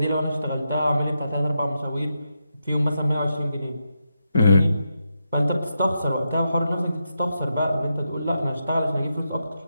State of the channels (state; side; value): inverted; both; correlation -0.85